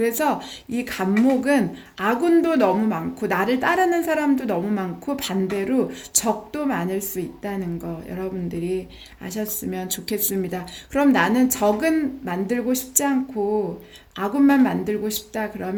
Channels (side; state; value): both; identical; correlation 1.00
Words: 이 간목은 아군도 너무 많고 나를 따르는 사람도 너무 많고 반대로 적도 많을 수 있다는 거 여러분들이 아셨으면 좋겠습니다. 그럼 나는 적은 만들고 싶지 않고 아군만 만들고 싶다